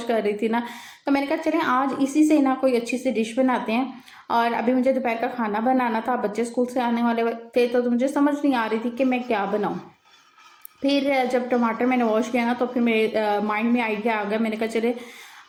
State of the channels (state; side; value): identical; both; correlation 1.00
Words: कर रही थी ना, तो मैंने कहा चले आज इसी से ना कोई अच्छी सी डिश बनाते हैं। और अभी मुझे दोपहर का खाना बनाना था, बच्चे स्कूल से आने वाले थे, तो मुझे समझ नहीं आ रही थी कि मैं क्या बनाऊँ। फिर जब टमाटर मैंने वॉश किया ना, तो फिर मेरे माइंड में आइडिया आ गया। मैंने कहा चले